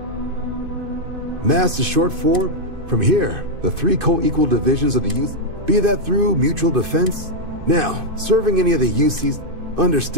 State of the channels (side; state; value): left; late; 2.5 ms